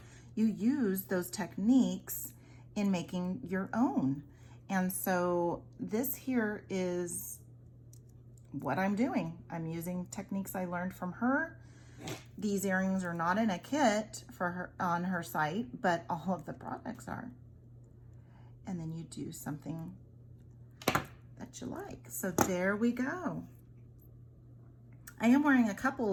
You use those techniques in making your own. And so this here is what I'm doing. I'm using techniques I learned from her. These earrings are not in a kit for her on her site, but all of the products are. And then you do something that you like. So there we go. I'm wearing a couple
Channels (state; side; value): identical; both; correlation 1.00